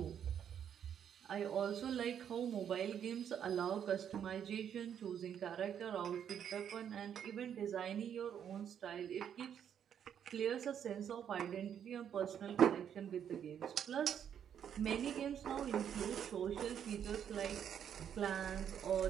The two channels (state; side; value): quieter; left; 8.8 dB